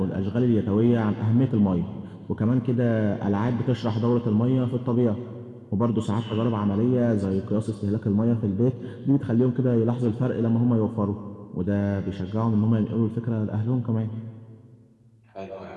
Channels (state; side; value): identical; both; correlation 1.00